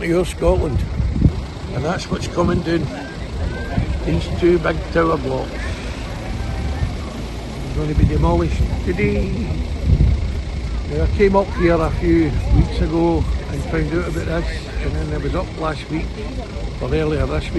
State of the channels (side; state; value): both; identical; correlation 1.00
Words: to OorScotland, and that's what's coming down these two big tower blocks. They're going to be demolished today. Now, I came up here a few weeks ago and found out about this, and then I was up last week, or earlier this